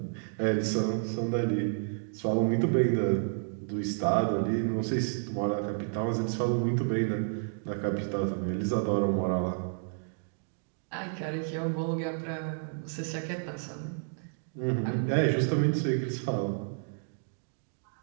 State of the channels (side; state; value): left; silent; digital silence